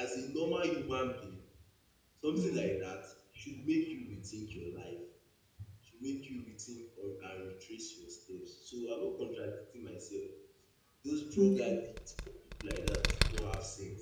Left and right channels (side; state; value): both; identical; correlation 1.00